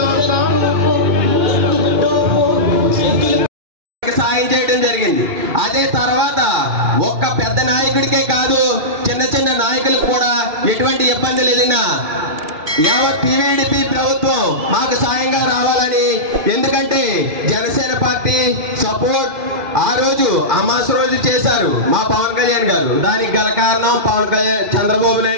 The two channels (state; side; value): late; left; 2.4 ms